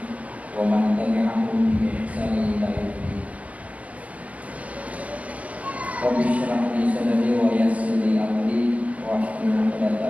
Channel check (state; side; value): late; left; 0.073 ms